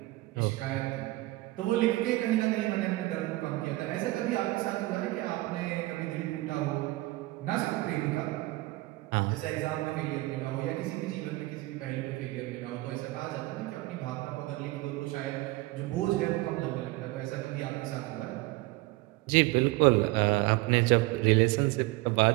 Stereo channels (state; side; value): quieter; left; 20.2 dB